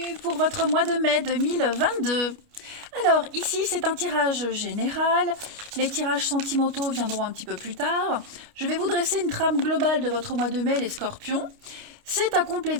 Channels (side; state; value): left; late; 29 ms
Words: pour votre mois de mai 2022. Alors ici c'est un tirage général, les tirages sentimentaux viendront un petit peu plus tard. Je vais vous dresser une trame globale de votre mois de mai les Scorpions. C'est à